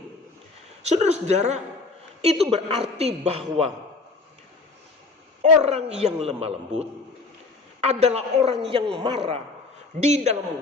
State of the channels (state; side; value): quieter; right; 3.8 dB